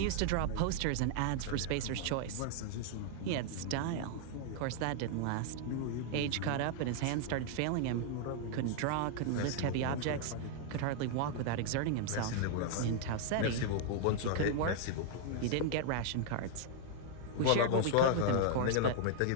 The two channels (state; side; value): different; both; correlation -0.01